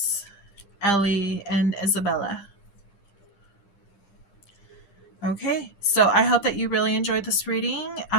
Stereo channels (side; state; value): right; late; 10 ms